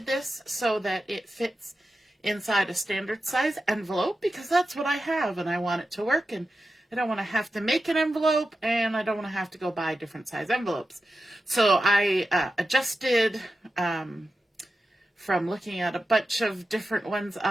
this so that it fits inside a standard size envelope, because that's what I have and I want it to work, and I don't want to have to make an envelope, and I don't want to have to go buy different size envelopes. So I adjusted from looking at a bunch of different ones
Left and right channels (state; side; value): normal; both; correlation 0.92